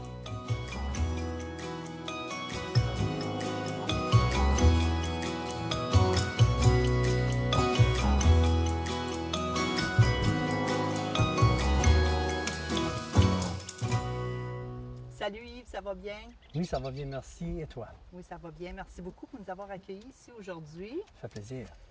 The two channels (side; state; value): both; identical; correlation 1.00